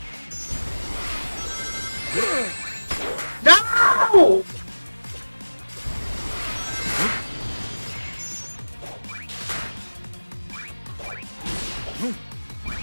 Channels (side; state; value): both; inverted; correlation -1.00